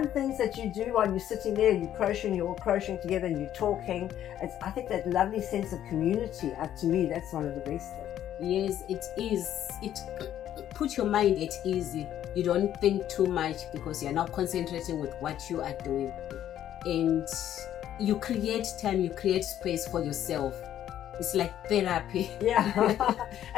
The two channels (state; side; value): quieter; right; 11.3 dB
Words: things that you do while you're sitting there, you're all crocheting together and you're talking. I think that lovely sense of community, to me, that's one of the best things. Yes, it is. It puts your mind at ease. You don't think too much because you're now concentrating with what you are doing. And you create time, you create space for yourself. It's like therapy. Yeah.